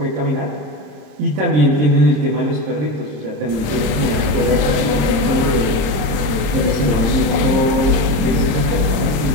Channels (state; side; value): late; left; 26 ms